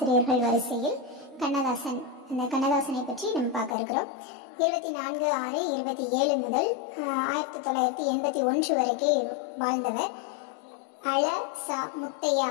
வரிசையில் கண்ணதாசன், அந்த கண்ணதாசனை பற்றி நம்ம பார்க்க இருக்கிறோம். 24/6/27 முதல் 1981 வரைக்கும் வாழ்ந்தவர். அழ சா முத்தையா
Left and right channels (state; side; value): drops out; right; at 3.8 s